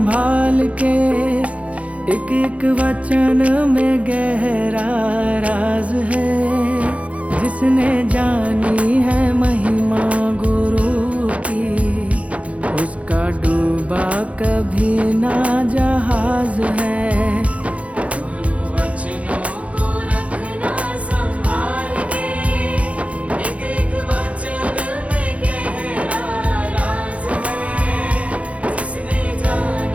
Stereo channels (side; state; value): left; late; 0.064 ms